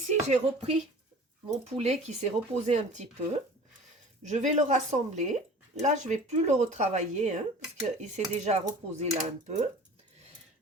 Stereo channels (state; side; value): normal; both; correlation 0.42